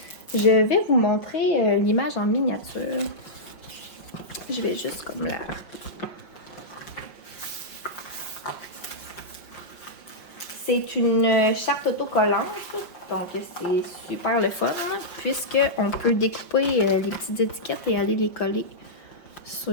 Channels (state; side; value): late; right; 5.6 ms